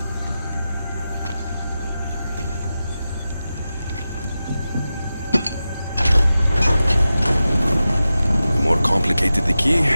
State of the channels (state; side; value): inverted; both; correlation -0.93